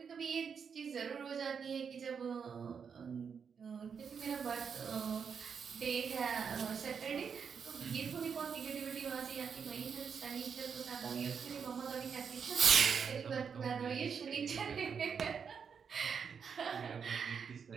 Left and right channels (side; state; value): left; quieter; 6.6 dB